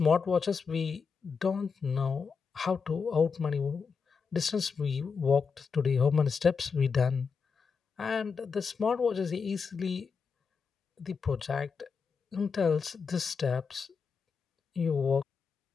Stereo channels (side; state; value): right; quieter; 5.5 dB